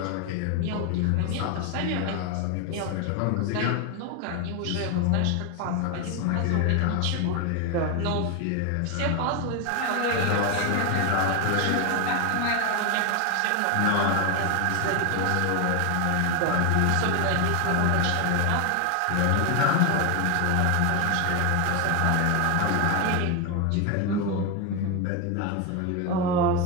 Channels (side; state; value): both; different; correlation 0.01